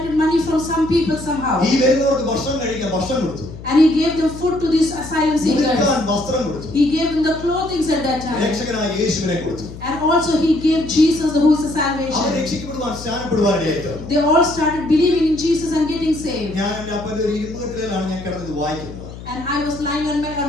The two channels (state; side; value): noise; left; hum, 13 dB below the sound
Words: money from some people somehow. ഈ വരുന്നവർക്ക് ഭക്ഷണം കഴിക്കാൻ ഭക്ഷണം കൊടുത്തു, And he gave them food to these asylum seekers. ഉടുക്കാൻ വസ്ത്രം കൊടുത്തു, He gave them the clothing at that time. രക്ഷകനായ യേശുവിനെ കൊടുത്തു. And also he gave Jesus who is the our salvation. രക്ഷിക്കപ്പെടുവാൻ സ്നാനപ്പെടുവാനായിട്ട് They all started believing in Jesus and getting saved. ഞാൻ എന്റെ അപ്പന്റെ ഒരു ഇരുമ്പുകെട്ടിലാണ് ഞാൻ കിടന്നത് വായിക്കുന്നത്. And I was lying